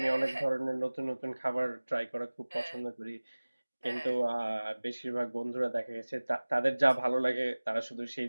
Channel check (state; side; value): inverted; both; correlation -1.00